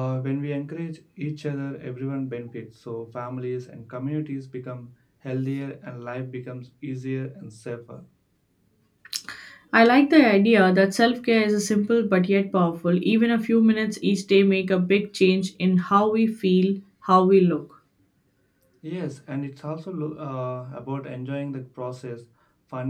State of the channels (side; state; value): both; identical; correlation 1.00